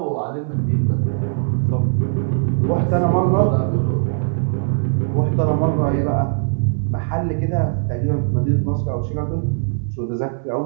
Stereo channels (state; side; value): silent; left; 64 dB below the other